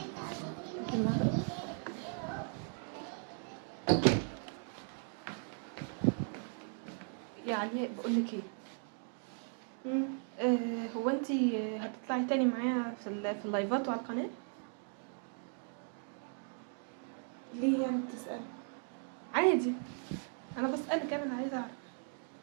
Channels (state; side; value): silent; left; 53 dB below the other